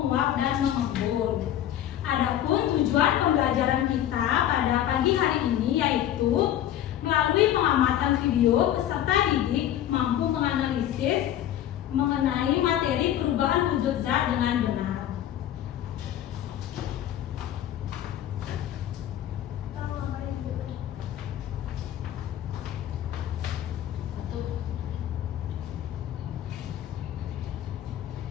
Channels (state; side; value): quieter; right; 11.6 dB